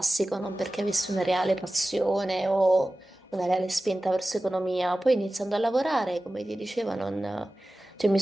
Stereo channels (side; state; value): both; normal; correlation 0.96